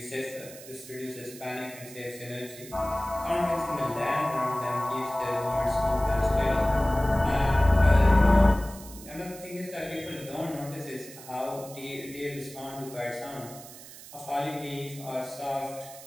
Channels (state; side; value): noise; right; hiss, 16 dB below the sound